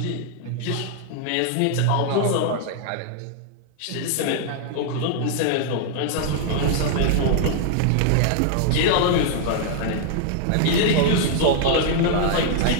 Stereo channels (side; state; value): both; different; correlation 0.00